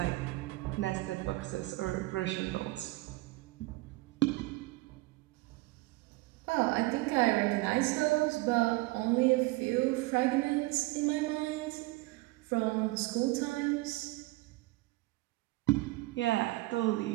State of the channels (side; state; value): left; quieter; 20.9 dB